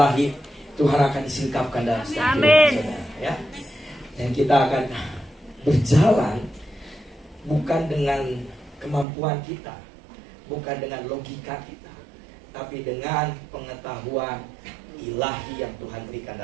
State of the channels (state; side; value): drops out; left; at 9.1 s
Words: Tuhan akan disingkapkan dalam setiap kehidupan saudara, ya. Dan kita akan berjalan bukan dengan kemampuan kita, bukan dengan logika kita, tapi dengan pengetahuan ilahi yang Tuhan berikan